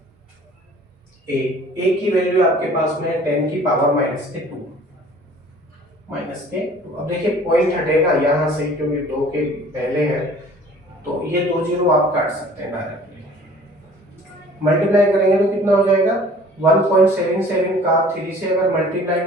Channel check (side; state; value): both; normal; correlation 0.50